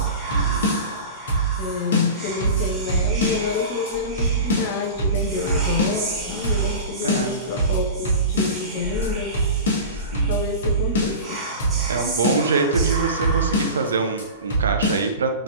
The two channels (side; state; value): both; inverted; correlation -0.32